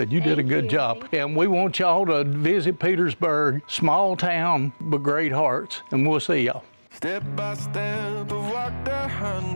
You did a good job. And we want y'all to visit Petersburg, small town, but great hearts. And we'll see y'all. Step by step, I've walked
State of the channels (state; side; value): inverted; both; correlation -1.00